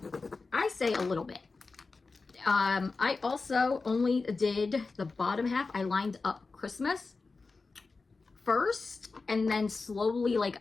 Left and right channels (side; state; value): right; quieter; 4.0 dB